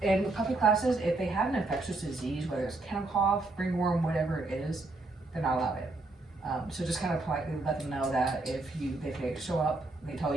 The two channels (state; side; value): quieter; left; 3.1 dB